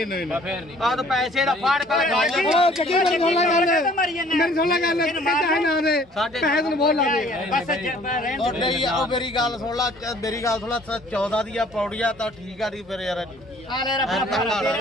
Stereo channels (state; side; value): normal; both; correlation 0.56